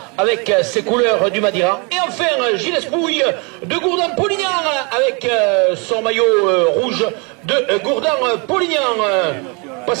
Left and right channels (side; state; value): left; quieter; 32.2 dB